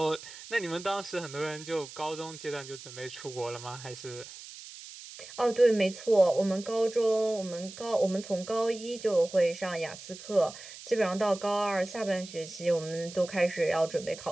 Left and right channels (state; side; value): noise; right; hiss, 15 dB below the sound